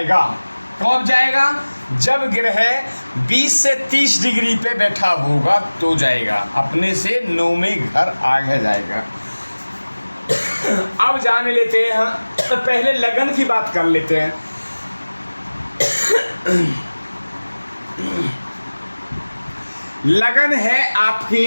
कब जाएगा, जब ग्रह 20 से 30 डिग्री पे बैठा होगा तो जाएगा, अपने से 9वें घर आगे जाएगा। अब जान लेते हैं, पहले लगन की बात कर लेते हैं। लगन है आपकी,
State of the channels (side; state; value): both; inverted; correlation -1.00